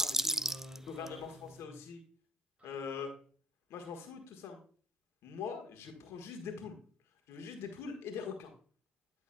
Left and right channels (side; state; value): both; normal; correlation 0.57